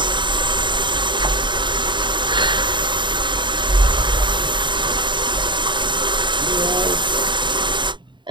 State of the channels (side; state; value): left; late; 0.23 ms